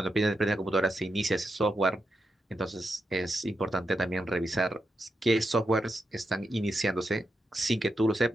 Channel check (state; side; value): normal; both; correlation 0.86